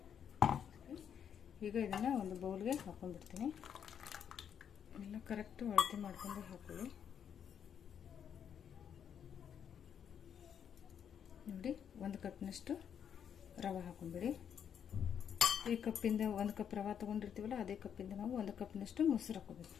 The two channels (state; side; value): quieter; right; 8.3 dB